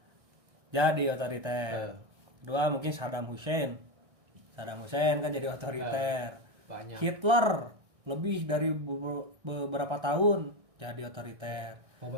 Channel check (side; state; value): left; late; 1.6 ms